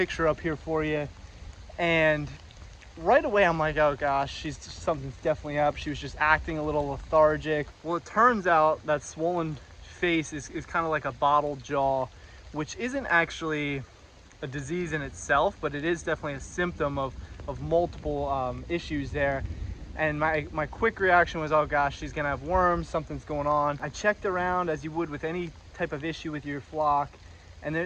up here for you. And right away I'm like, oh gosh, something's definitely up. She was just acting a little lethargic. Well, it turns out that swollen face is kind of like a bottle jaw, which isn't actually a disease in itself, but it is definitely a symptom of multiple issues there. And my quick reaction was, oh gosh, she's gonna have worms, something's going on. I checked around as you would with any type of issue with your flock, and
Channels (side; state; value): both; identical; correlation 1.00